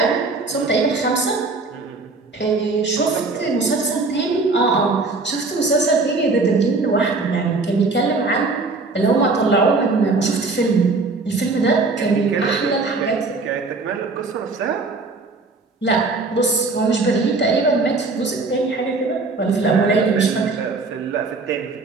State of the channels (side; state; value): left; quieter; 3.8 dB